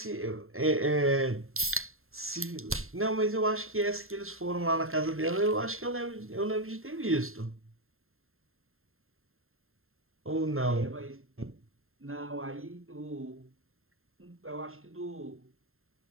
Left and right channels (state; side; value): late; left; 0.61 ms